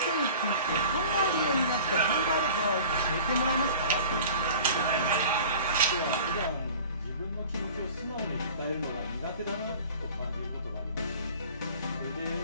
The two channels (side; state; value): both; inverted; correlation -0.43